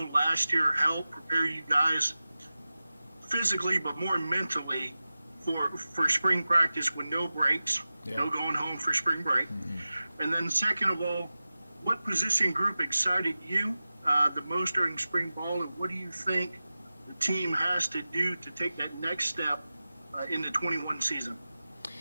last year help prepare you guys physically but more mentally for spring practice with no breaks, no going home for spring break? And then second of all, what position group excited you the most during spring ball, and what do you think the team has to do to take that next step in the 21 season?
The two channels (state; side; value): inverted; both; correlation -0.95